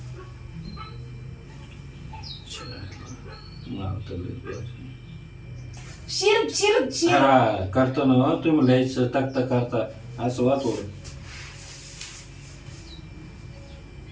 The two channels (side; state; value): both; identical; correlation 1.00